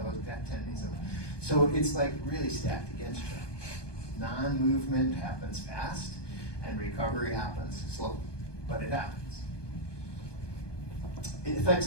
10 days. So it's like really stacked against you. Non-movement happens fast, and recovery happens slow, but it happens. It affects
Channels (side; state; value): right; late; 1.2 ms